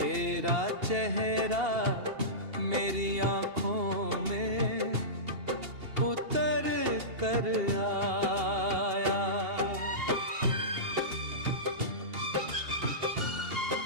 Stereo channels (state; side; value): late; left; 2.8 ms